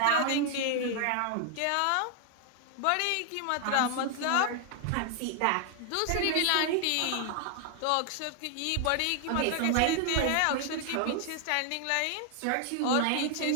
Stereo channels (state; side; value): different; both; correlation 0.00